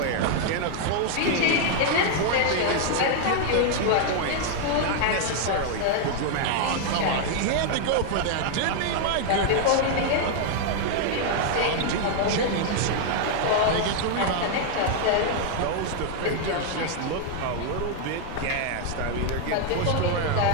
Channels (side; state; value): both; different; correlation 0.00